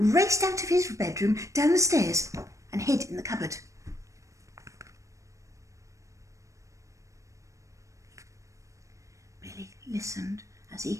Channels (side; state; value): left; late; 0.15 ms